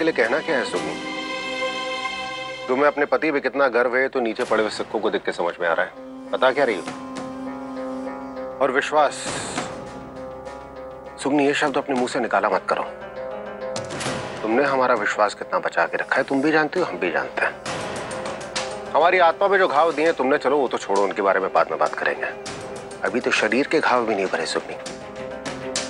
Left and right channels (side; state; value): both; identical; correlation 1.00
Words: लिए कहना क्या है सुगनी? तुम्हें अपने पति पे कितना गर्व है तो नीचे पड़े हुए सिक्कों को देख के समझ में आ रहा है। बता क्या रही हो? और विश्वास, सुगनी ये शब्द अपने मुंह से निकाला मत करो। तुमने हमारा विश्वास कितना बचा के रखा है तुम भी जानती हो, हम भी जानते हैं। हमारी आत्मा पे जो घाव दिए तुमने, चलो वो तो छोड़ो, उनके बारे में बाद में बात करेंगे। अभी तो शरीर के घाव भी नहीं भरे सुगनी।